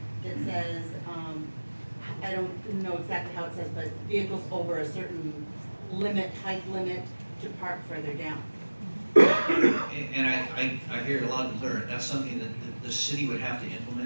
that says, I don't know exactly how it says, but vehicles over a certain height limit to park further down. And I hear it loud and clear. That's something that the city would have to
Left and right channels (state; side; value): inverted; both; correlation -1.00